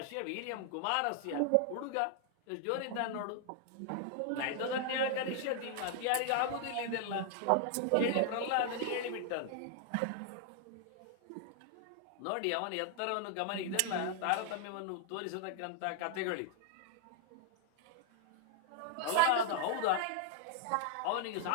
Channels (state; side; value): different; both; correlation 0.00